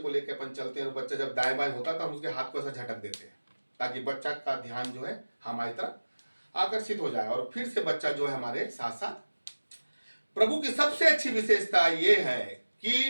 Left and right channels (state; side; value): inverted; both; correlation -1.00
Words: लेकर अपन चलते हैं, बच्चा जब दाएं बाएं होता है तो हम उसके हाथ को ऐसा झटक देते हैं, ताकि बच्चा का ध्यान जो है हमारी तरफ आकर्षित हो जाए और फिर से बच्चा जो है हमारे साथ साथ। प्रभु की सबसे अच्छी विशेषता यह है